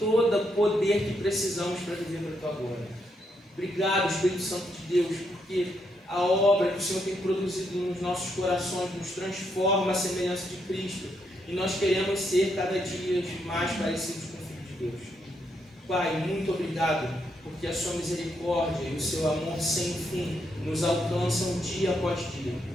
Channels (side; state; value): both; normal; correlation 0.78